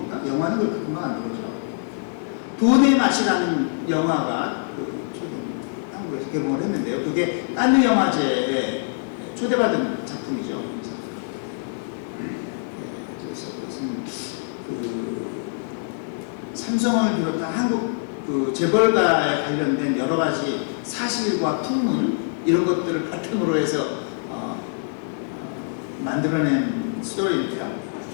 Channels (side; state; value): right; silent; digital silence